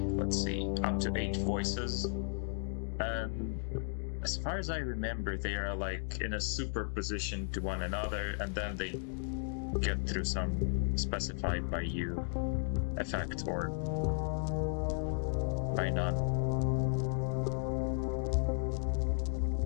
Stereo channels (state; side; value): silent; right; digital silence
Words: let's see, up to 8 voices. And as far as I remember, they are like in a superposition to one another, and then they get through some specified by you effect or by none.